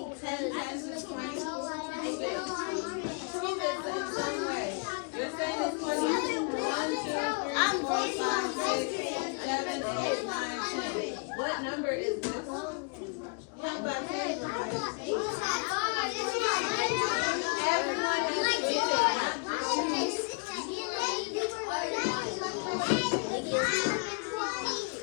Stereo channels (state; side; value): quieter; right; 34.4 dB